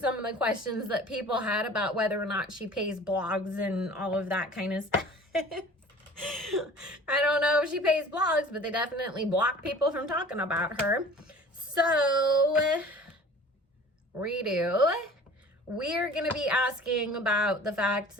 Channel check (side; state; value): both; normal; correlation 0.45